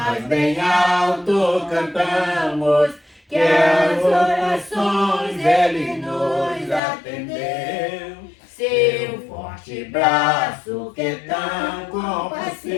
bem alto cantamos, que as orações Ele nos atendeu. Seu forte braço que é tão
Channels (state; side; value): drops out; right; at 6.8 s